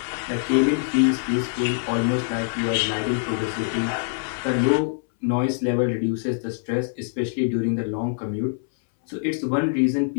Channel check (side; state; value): right; silent; 63 dB below the other